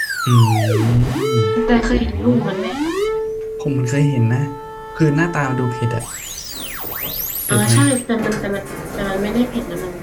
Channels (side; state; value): both; identical; correlation 1.00